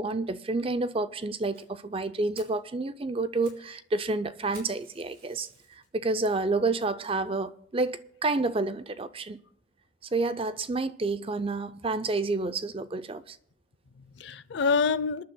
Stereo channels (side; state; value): both; normal; correlation 0.30